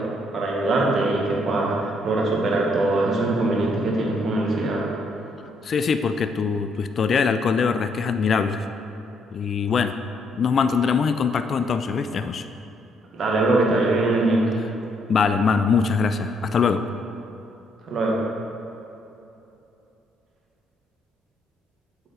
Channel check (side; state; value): both; normal; correlation 0.71